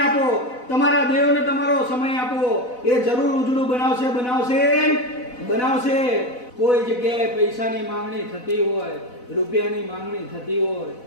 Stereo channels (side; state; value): right; late; 4.0 ms